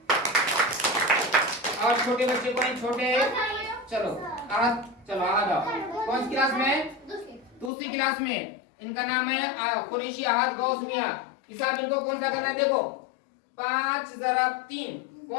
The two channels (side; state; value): right; drops out; at 7.7 s